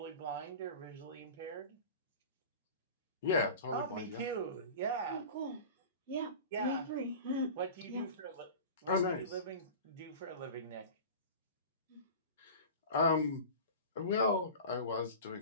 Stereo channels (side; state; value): both; inverted; correlation -0.34